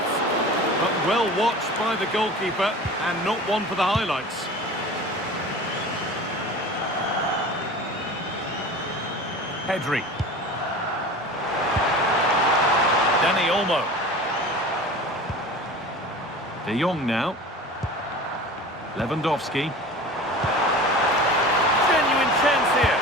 but well watched by the goalkeeper, and not one for the highlights. Pedri. Dani Olmo. De Jong now. Lewandowski. Genuine chance here.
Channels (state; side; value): normal; both; correlation 0.37